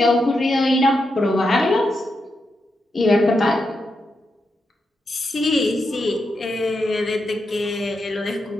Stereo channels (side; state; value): both; normal; correlation 0.85